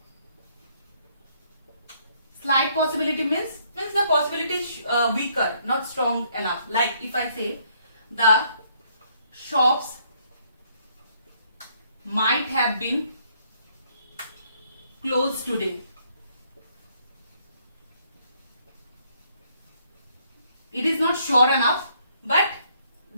Slight possibility means the possibility is weaker, not strong enough. Like if I say the shops might have been closed today. It is not sure enough, but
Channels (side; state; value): both; inverted; correlation -0.68